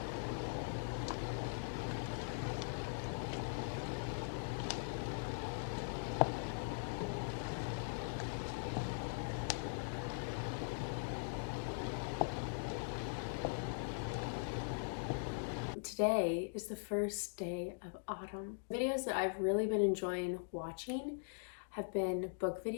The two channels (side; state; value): right; silent; digital silence